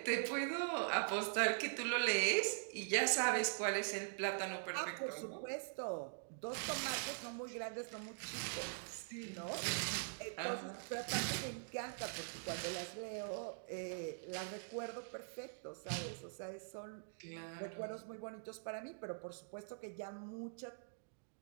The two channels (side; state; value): left; silent; digital silence